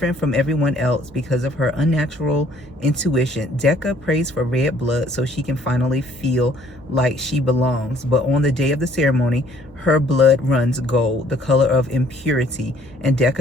from everyone else because of her unnatural intuition, Decca prays for red blood so she can finally feel like she belongs. But on the day of the ceremony, her blood runs gold, the color of impurity, and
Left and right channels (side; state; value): both; normal; correlation 0.60